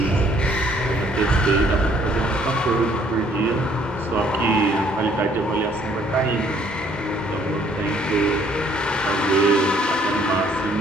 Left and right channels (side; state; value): both; normal; correlation 0.63